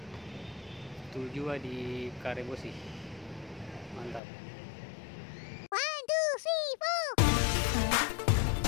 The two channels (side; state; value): right; drops out; at 4.2 s